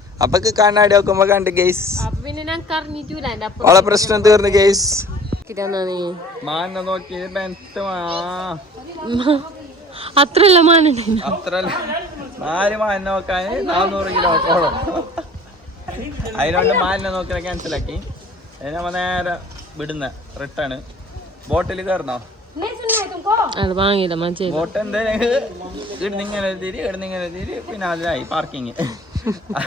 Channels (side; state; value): both; normal; correlation 0.48